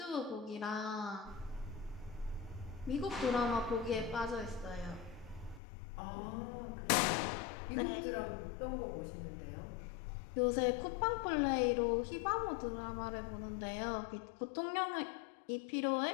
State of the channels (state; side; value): drops out; right; at 5.6 s